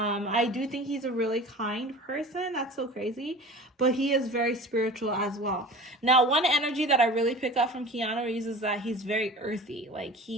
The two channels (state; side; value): normal; both; correlation 0.38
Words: I do think he's a really kind person. That's so crazy. But he is very spiritual as well. Now, one energy that I really pick up from Keanu Reeves is that he's very earthy. Like,